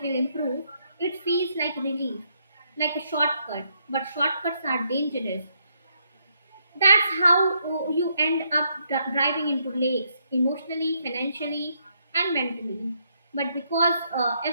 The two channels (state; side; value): inverted; both; correlation -0.75